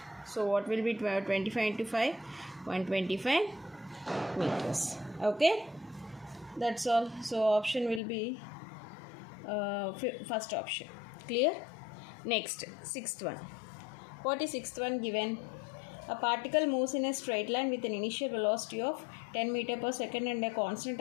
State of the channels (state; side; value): drops out; right; at 8.0 s